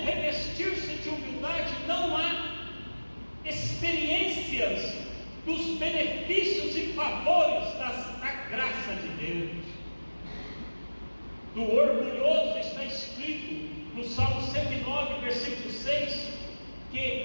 revestir-se de humildade, não há experiências dos benefícios e favores da graça de Deus. Do orgulhoso está escrito no Salmo 109, versículo 6,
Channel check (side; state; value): both; inverted; correlation -1.00